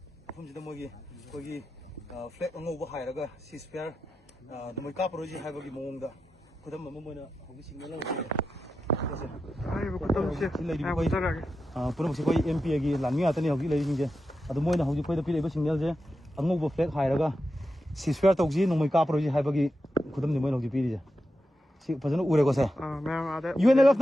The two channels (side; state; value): both; normal; correlation 0.89